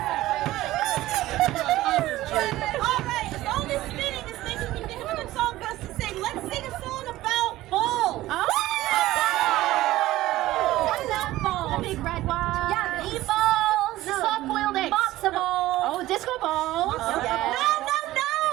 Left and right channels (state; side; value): quieter; left; 16.2 dB